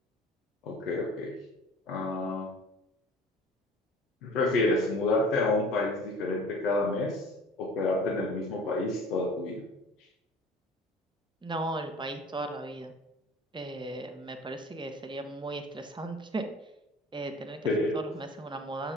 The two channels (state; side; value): normal; both; correlation 0.45